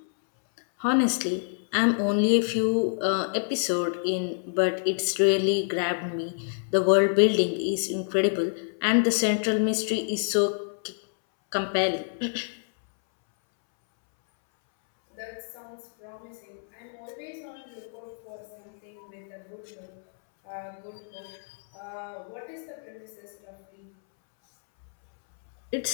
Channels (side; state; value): right; silent; 60 dB below the other